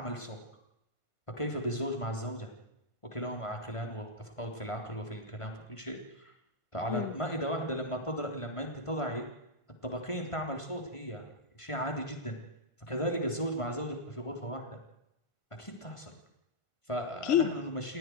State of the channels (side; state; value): right; late; 1.5 ms